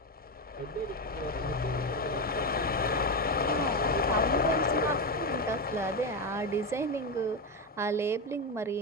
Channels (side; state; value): both; normal; correlation 0.12